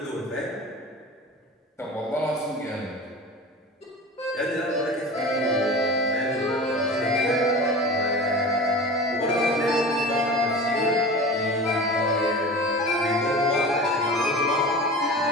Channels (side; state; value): both; normal; correlation 0.34